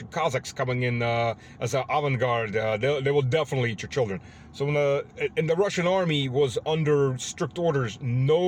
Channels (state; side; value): identical; both; correlation 1.00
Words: Cossacks coming in as an avant-garde. They will definitely eat your children. So when the Russian army was under strict orders,